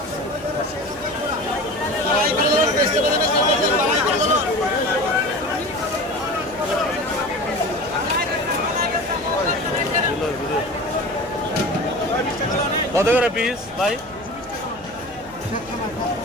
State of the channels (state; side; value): noise; left; hum, 24 dB below the sound